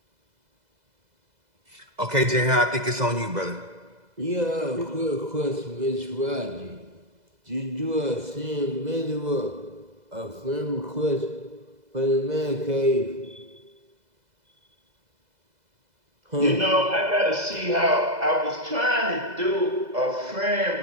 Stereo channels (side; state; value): left; late; 2.0 ms